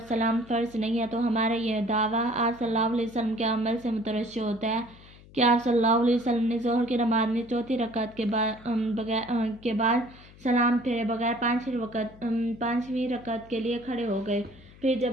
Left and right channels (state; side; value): noise; left; hum, 22 dB below the sound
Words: سلام فرض نہیں ہے، تو ہمارا یہ دعویٰ آپ صلی اللہ علیہ وسلم کے عمل سے مترشح ہوتا ہے کہ آپ صلی اللہ علیہ وسلم نے ظہر کی نماز میں چوتھی رکعت کے بعد سلام پھیرے بغیر پانچویں رکعت کے لیے کھڑے ہو گئے، پھر